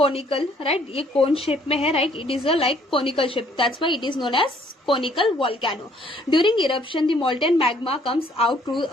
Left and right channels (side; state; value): both; normal; correlation 0.63